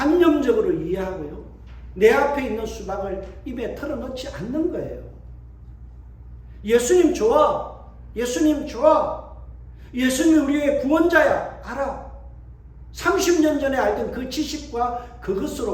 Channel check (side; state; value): both; identical; correlation 1.00